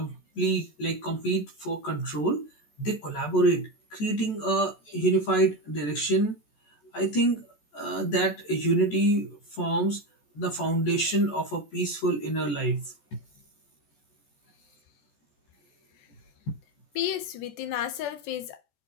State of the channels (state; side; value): late; right; 14 ms